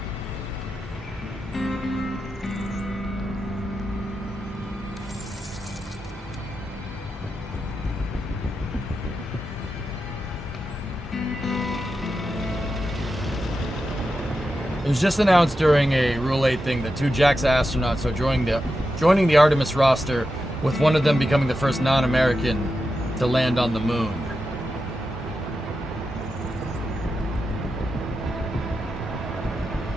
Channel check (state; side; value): normal; both; correlation 0.89